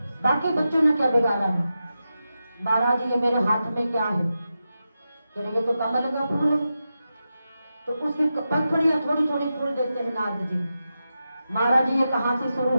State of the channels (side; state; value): both; inverted; correlation -0.90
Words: बाकी बच्चों ने क्या बिगाड़ा है। महाराज ये मेरे हाथ में क्या है? कह रहे ये तो कमल का फूल है। तो उसकी पंखुड़ियां थोड़ी थोड़ी फूल देते हैं नारद जी। महाराज ये कहां से शुरू